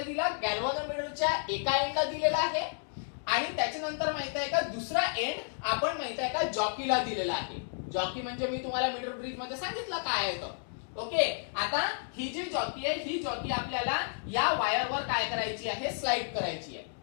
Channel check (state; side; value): silent; right; digital silence